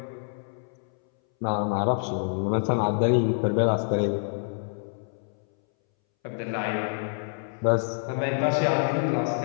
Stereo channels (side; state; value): right; silent; 60 dB below the other